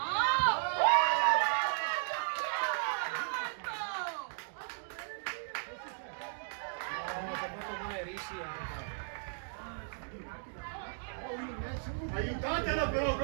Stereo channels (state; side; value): silent; left; digital silence